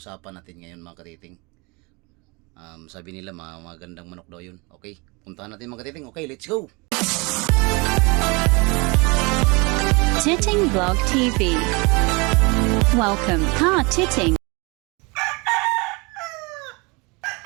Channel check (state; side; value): quieter; left; 28.0 dB